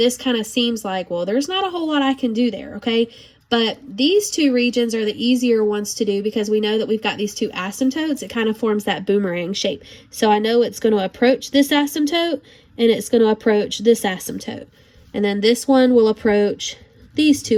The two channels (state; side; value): identical; both; correlation 1.00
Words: kind of seems like, well, there's not a whole lot I can do there, okay? But these two regions are the easier ones to do because we know that we've got these two asymptotes. It kind of forms that boomerang shape. So I know it's going to approach this asymptote, and it's going to approach this asymptote. And then this one will approach these two